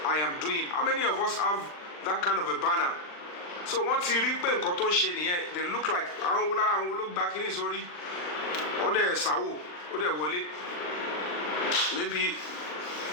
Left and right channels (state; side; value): late; right; 39 ms